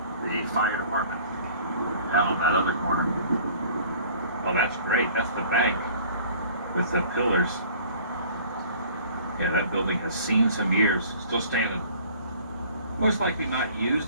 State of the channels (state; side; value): inverted; both; correlation -0.50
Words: the fire department down on that other corner. Oh, that's great. That's the bank with the pillars. Yeah, that building has seen some years. Still standing. Most likely not